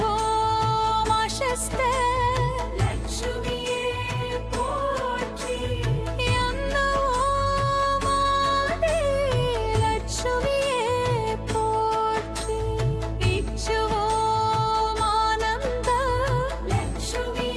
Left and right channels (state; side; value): identical; both; correlation 1.00